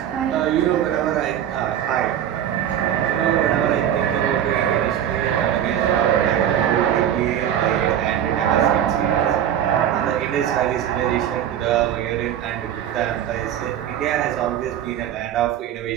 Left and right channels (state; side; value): quieter; left; 10.3 dB